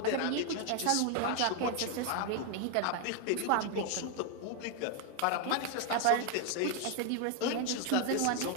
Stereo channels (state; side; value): different; both; correlation 0.01